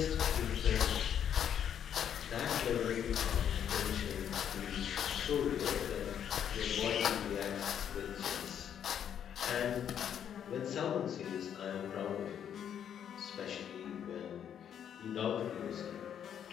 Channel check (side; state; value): right; quieter; 9.0 dB